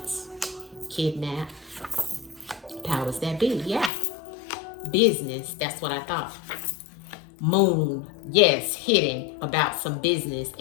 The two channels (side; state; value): right; drops out; at 3.9 s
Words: Kidnap. Powers that be, yeah. Business, that's what I thought. Moon, yes, hidden about some business,